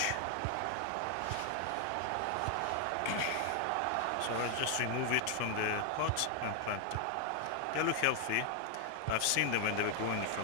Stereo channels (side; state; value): both; different; correlation 0.00